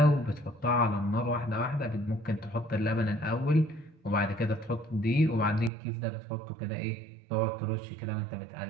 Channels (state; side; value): drops out; left; at 5.7 s